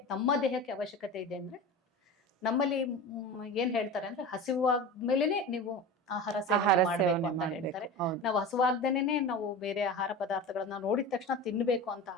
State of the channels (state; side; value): normal; both; correlation 0.31